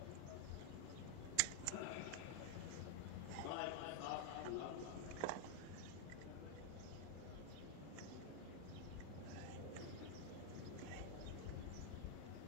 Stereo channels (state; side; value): different; both; correlation 0.00